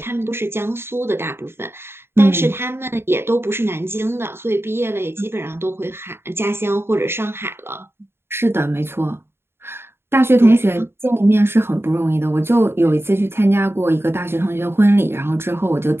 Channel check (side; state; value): left; late; 0.11 ms